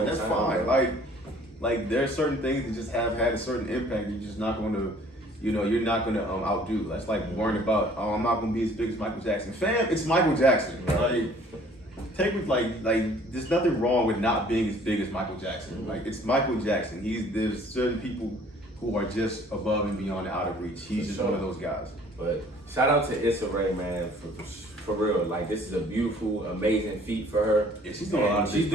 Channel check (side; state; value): both; normal; correlation 0.55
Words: That's fine. Like, there are certain things that just have had a certain impact. You're just not going to, you're not going to outdo. That's like worrying about, I'm not going to be as big as Michael Jackson. Fam, it's Michael Jackson. Like, take with like there's nothing wrong with not being as big as Michael Jackson. Like, it's Michael Jackson. There's certain people who are just above and beyond and out of reach. He's just one of those guys. But shout out to Issa Rae, man, for real. Like, this is a beautiful, amazing feat for her. Yeah, she's doing a lot of She's big